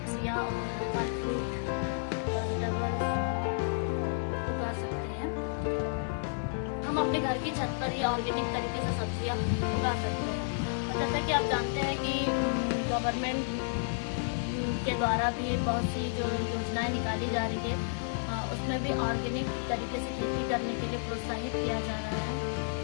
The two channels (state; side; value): silent; right; digital silence